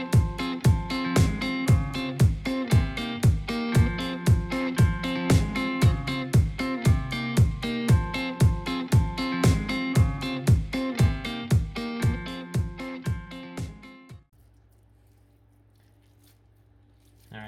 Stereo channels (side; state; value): both; identical; correlation 1.00